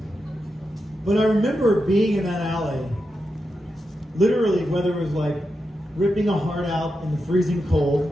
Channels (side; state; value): both; normal; correlation 0.87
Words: But I remember being in that alley, literally, whether it was like ripping a heart out in the freezing